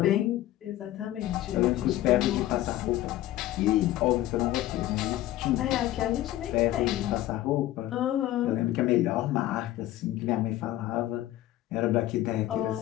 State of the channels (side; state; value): right; quieter; 14.6 dB